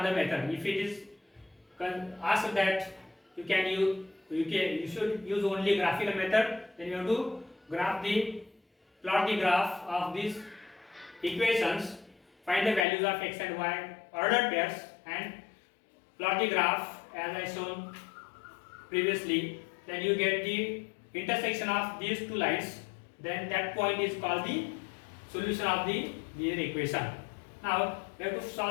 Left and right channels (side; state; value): right; drops out; at 12.9 s